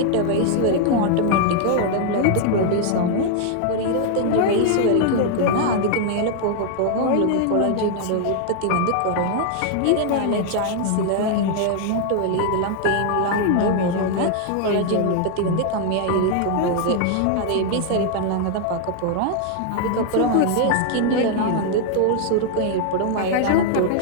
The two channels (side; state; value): both; different; correlation 0.00